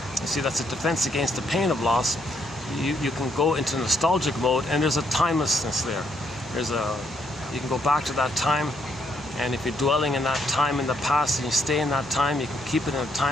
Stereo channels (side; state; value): both; normal; correlation 0.73